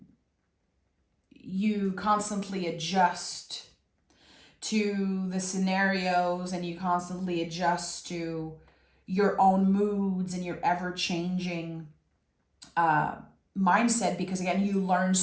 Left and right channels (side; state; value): both; identical; correlation 1.00